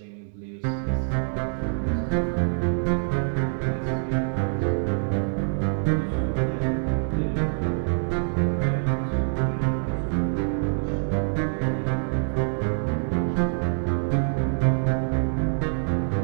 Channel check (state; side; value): silent; left; digital silence